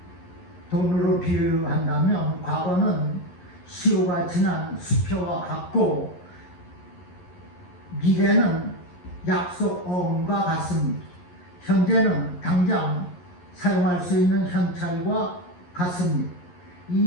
돈으로 비유한다면 과거는 시효가 지난 수표와 같고 미래는 약속 어음과 같습니다. 현재는 당장 사용할 수 있는 현찰과 같습니다.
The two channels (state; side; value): late; right; 11 ms